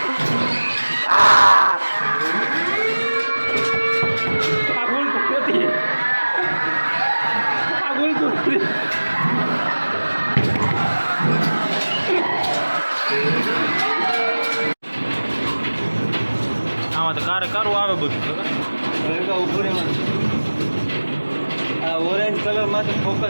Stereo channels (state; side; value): inverted; both; correlation -1.00